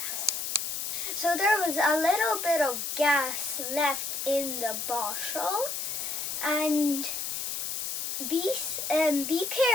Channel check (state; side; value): noise; left; hiss, 3 dB below the sound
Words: So there was a little bit of gas left in the bottle, and be